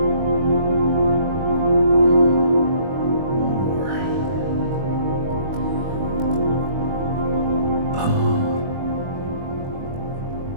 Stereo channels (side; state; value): left; late; 22 ms